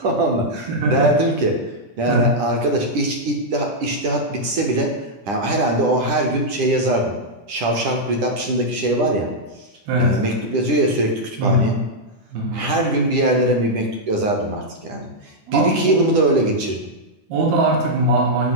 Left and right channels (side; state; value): left; late; 10 ms